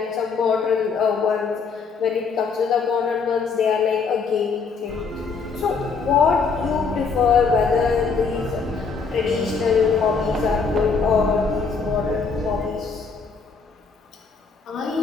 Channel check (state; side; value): quieter; right; 5.1 dB